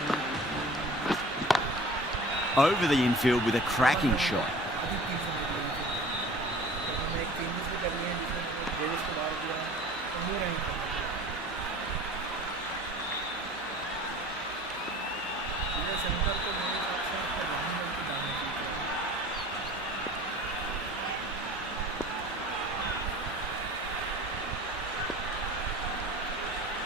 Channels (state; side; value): normal; both; correlation 0.43